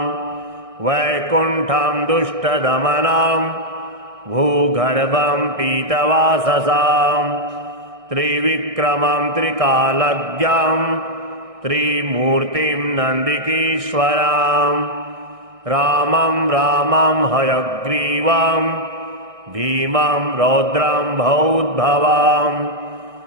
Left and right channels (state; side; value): late; left; 1.6 ms